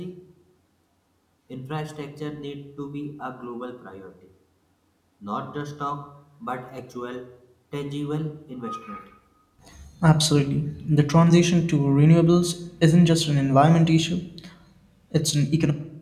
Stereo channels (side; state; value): both; identical; correlation 1.00